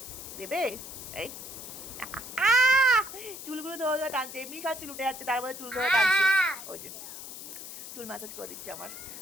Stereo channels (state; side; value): noise; left; hiss, 11 dB below the sound